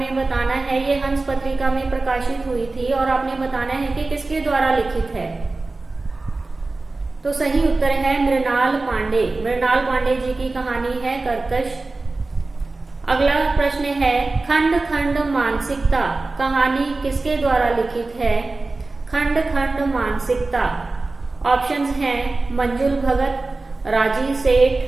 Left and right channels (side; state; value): left; quieter; 3.4 dB